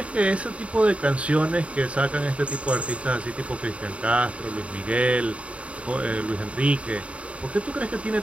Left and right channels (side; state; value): left; late; 0.063 ms